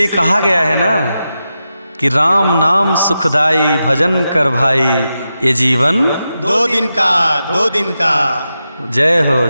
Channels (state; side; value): inverted; both; correlation -0.90